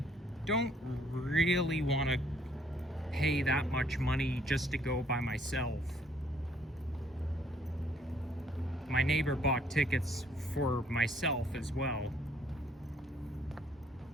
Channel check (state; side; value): normal; both; correlation 0.64